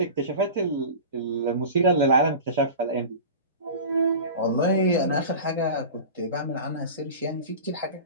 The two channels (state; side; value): inverted; both; correlation -0.33